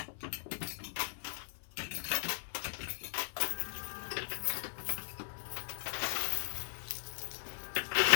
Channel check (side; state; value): right; silent; 53 dB below the other